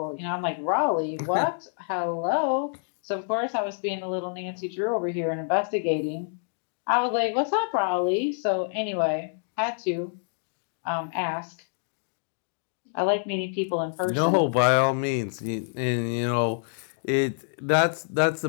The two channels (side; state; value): right; silent; digital silence